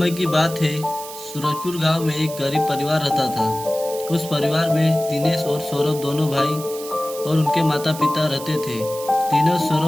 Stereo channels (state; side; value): noise; right; hiss, 13 dB below the sound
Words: की बात है। सूरजपुर गांव में एक गरीब परिवार रहता था। उस परिवार में दिनेश और सौरभ दोनों भाई और उनके माता पिता रहते थे। दिनेश